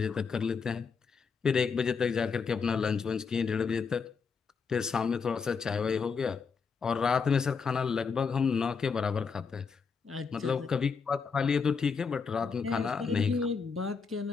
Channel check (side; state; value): right; quieter; 5.5 dB